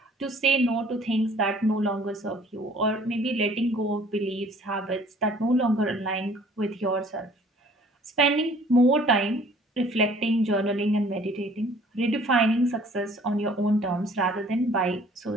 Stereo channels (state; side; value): normal; both; correlation 0.54